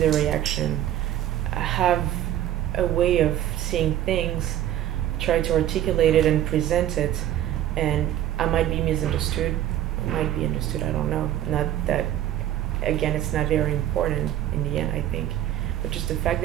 reaction. I have a way of seeing things, try to articulate it and present it, and I might be misunderstood, I might be understood, I don't know. Not that, again, it's not very important in the end, I think, but just the fact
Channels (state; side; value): quieter; left; 12.1 dB